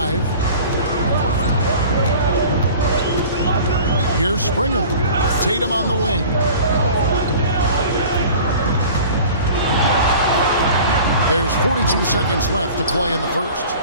Here's Springer. Tatum on the wing. There's 42 seconds left to play in the first.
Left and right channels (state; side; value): inverted; both; correlation -0.42